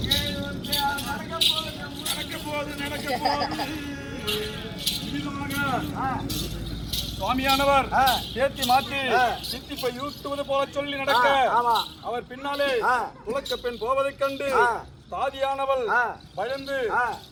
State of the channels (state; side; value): identical; both; correlation 1.00